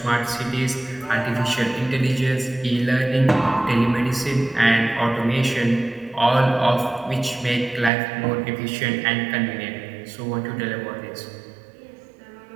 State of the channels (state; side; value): drops out; left; at 7.9 s